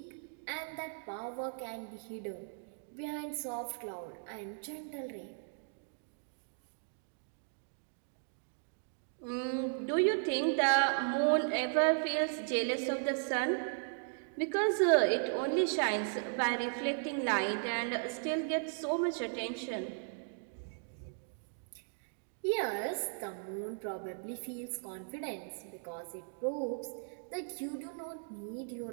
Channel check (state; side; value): silent; left; digital silence